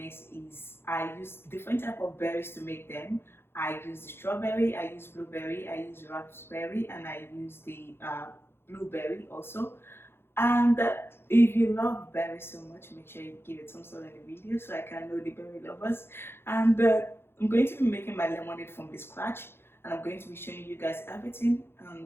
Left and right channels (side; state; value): right; late; 0.11 ms